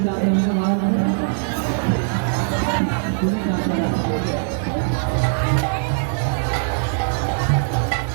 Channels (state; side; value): silent; left; digital silence